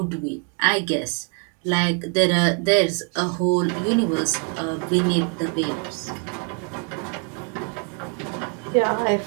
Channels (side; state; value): left; quieter; 37.6 dB